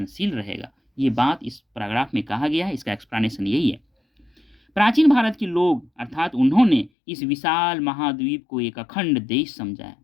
रहेगा। ये बात इस पैराग्राफ में कहा गया है, इसका एक्सप्लेनेशन यही है। प्राचीन भारत के लोग अर्थात उन्होंने इस विशाल महाद्वीप को एक अखंड देश समझा है।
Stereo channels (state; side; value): drops out; right; at 6.9 s